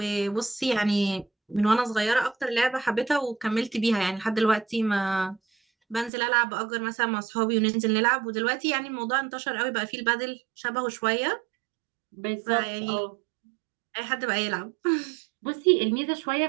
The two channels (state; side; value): drops out; left; at 6.1 s